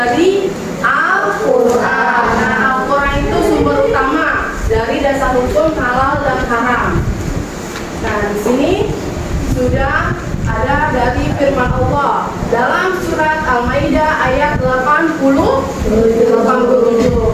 Al-Quran. Nah, Al-Quran itu sumber utama dari dasar hukum halal dan haram. Nah, di sini sudah ada dari firman Allah dalam surat Al-Maidah ayat 87.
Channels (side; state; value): both; identical; correlation 1.00